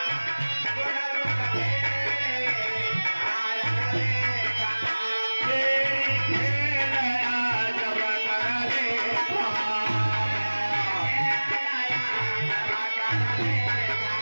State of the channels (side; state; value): both; inverted; correlation -1.00